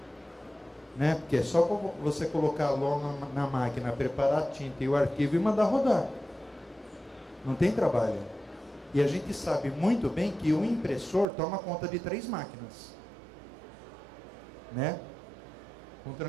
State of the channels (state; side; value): drops out; left; at 11.2 s